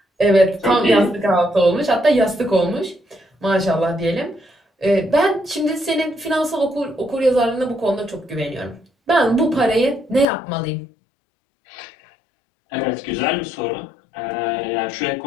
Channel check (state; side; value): drops out; right; at 10.2 s